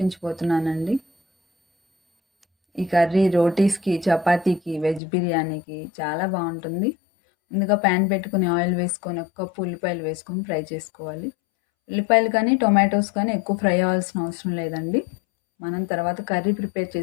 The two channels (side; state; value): right; drops out; at 5.0 s